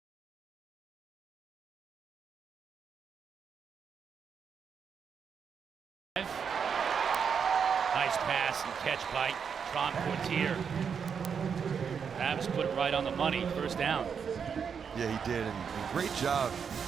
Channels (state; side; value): quieter; left; 6.7 dB